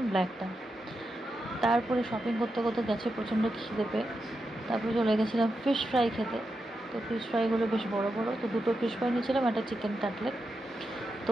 ব্ল্যাকটা। তারপরে শপিং করতে করতে গেছে প্রচণ্ড খিদে পেয়ে, তারপরে চলে গেছিলাম ফিশ ফ্রাই খেতে। তো ফিশ ফ্রাইগুলো বেশ বড় বড়, তো 2টো ফিশ ফ্রাই নিয়েছিলাম, একটা চিকেন কাটলেট। তো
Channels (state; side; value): normal; both; correlation 0.87